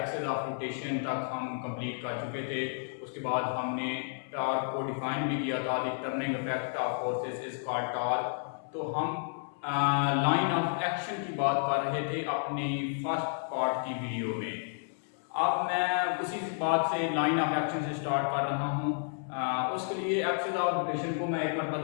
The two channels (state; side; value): silent; right; 57 dB below the other